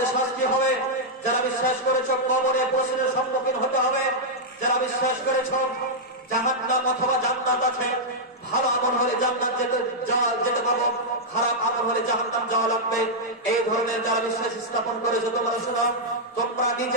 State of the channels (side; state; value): both; normal; correlation -0.06